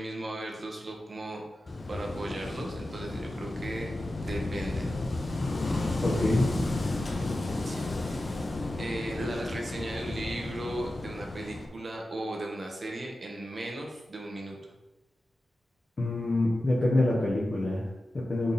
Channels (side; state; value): both; normal; correlation 0.93